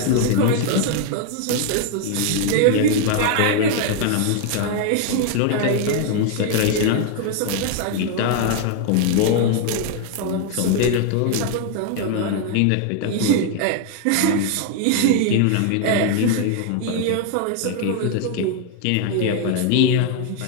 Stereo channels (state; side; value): different; both; correlation 0.00